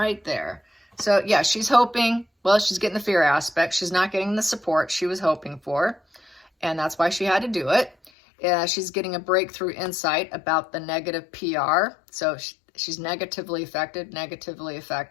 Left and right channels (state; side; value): drops out; right; at 8.1 s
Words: there. So yeah, she's hoping, well, she's getting the fear aspect. She's not getting the support she was hoping for. And that's why she had to do it. She's getting a breakthrough insight about the negative PR. So She's negatively affected,